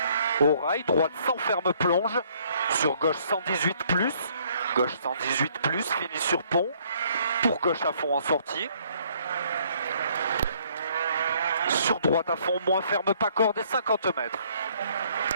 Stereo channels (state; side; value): inverted; both; correlation -0.64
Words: au rail, droite sans ferme plonge, sur gauche 118 plus, gauche 118 plus, fini sur pont, pour gauche à fond en sortie, sur droite à fond, moins ferme, pas corde et 50 mètres.